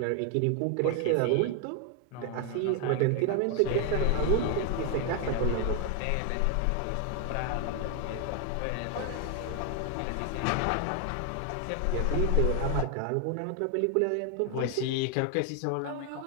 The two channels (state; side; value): different; both; correlation 0.00